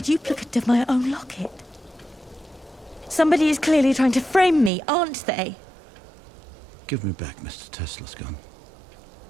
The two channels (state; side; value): drops out; left; at 4.7 s